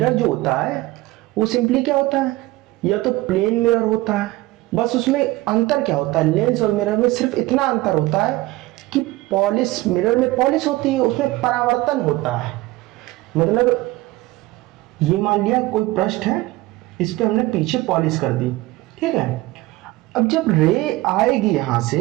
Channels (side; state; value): left; quieter; 19.0 dB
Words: जो होता है वो सिंपली क्या होता है, या तो प्लेन मिरर होता है, बस उसमें अंतर क्या होता है, लेंस और मिरर में सिर्फ इतना अंतर होता है कि पॉलिश, मिरर में पॉलिश होती है, उसमें परावर्तन होता है। मतलब ये मान लिया कोई पृष्ठ है, इस पे हमने पीछे पॉलिश कर दी, ठीक है। अब जब रे आएगी यहां